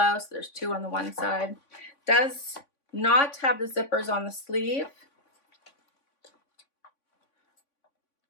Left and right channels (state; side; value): late; right; 3.5 ms